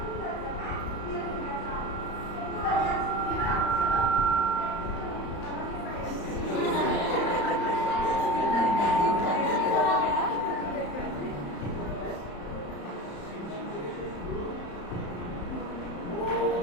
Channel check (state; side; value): late; right; 34 ms